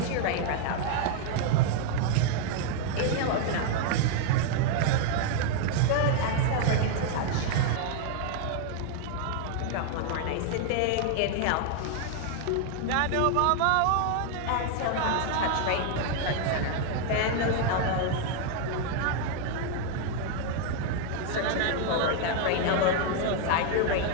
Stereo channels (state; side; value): different; both; correlation 0.00